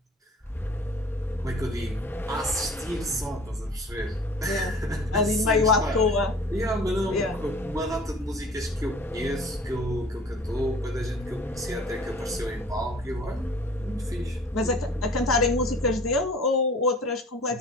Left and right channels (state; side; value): normal; both; correlation 0.47